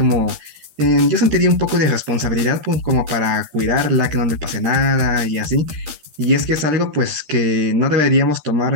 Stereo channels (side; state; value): left; late; 13 ms